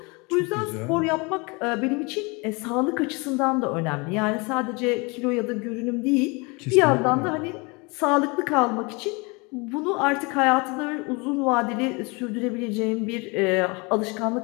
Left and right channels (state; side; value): quieter; right; 28.6 dB